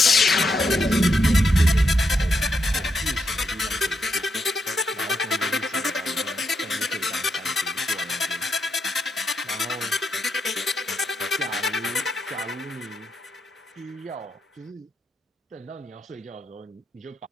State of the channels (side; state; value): both; normal; correlation 0.81